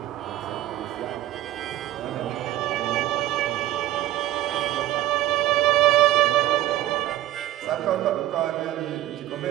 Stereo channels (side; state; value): left; quieter; 14.5 dB